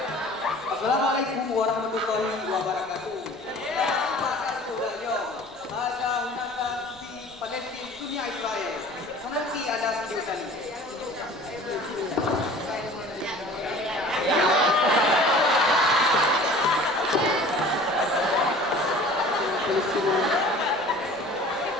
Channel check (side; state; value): left; noise; rumble, 30 dB below the sound